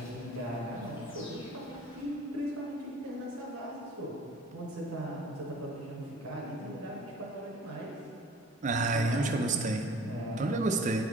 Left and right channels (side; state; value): both; normal; correlation 0.49